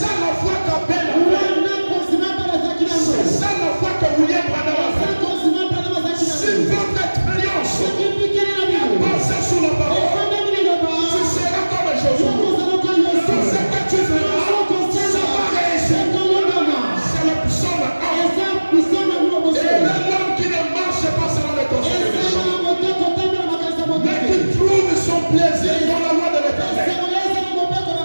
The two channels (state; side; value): inverted; both; correlation -1.00